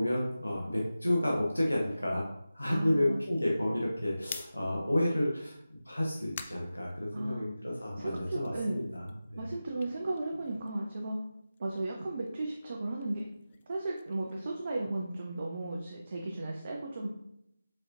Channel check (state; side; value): inverted; both; correlation -0.94